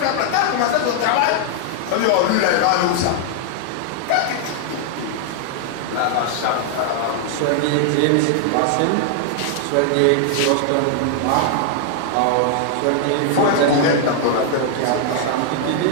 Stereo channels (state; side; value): different; both; correlation 0.00